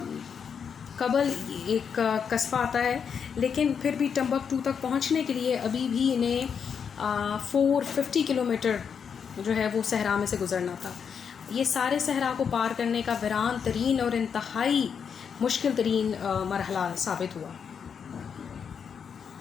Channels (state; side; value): quieter; right; 6.9 dB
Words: कबल एक कस्बा आता है, लेकिन फिर भी टिम्बक्टू तक पहुँचने के लिए अभी भी इन्हें 450 किलोमीटर जो है वो सहरा में से गुज़रना था. ये सारे सहरा को पार करने का वीरान तरीन और इंतहाई मुश्किल तरीन मरहला साबित हुआ.